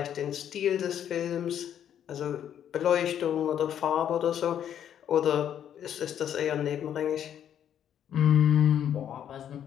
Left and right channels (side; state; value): right; quieter; 9.7 dB